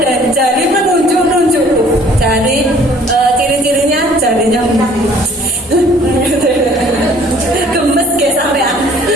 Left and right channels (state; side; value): normal; both; correlation 0.55